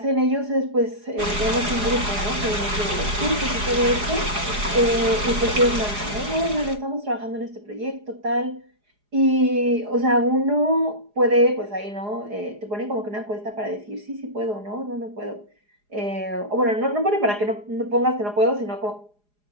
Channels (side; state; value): left; late; 4.8 ms